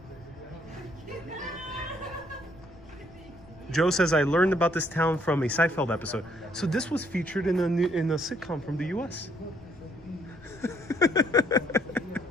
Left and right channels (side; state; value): left; noise; rumble, 22 dB below the sound